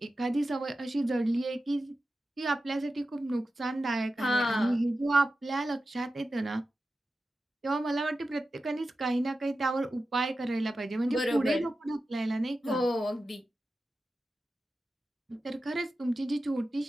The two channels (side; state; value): both; normal; correlation 0.93